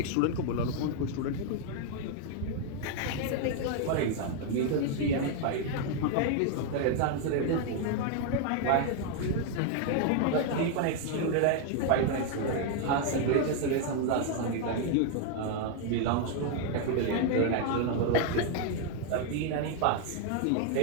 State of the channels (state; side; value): different; both; correlation 0.00